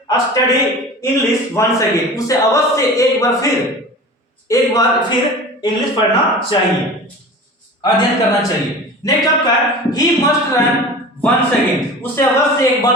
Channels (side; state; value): both; normal; correlation 0.37